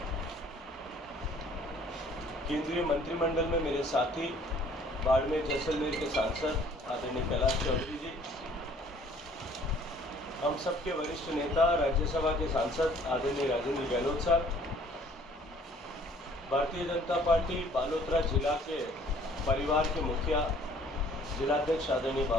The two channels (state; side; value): normal; both; correlation 0.56